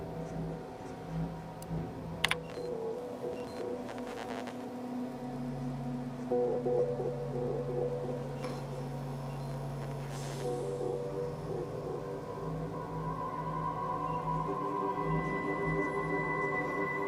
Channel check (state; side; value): identical; both; correlation 1.00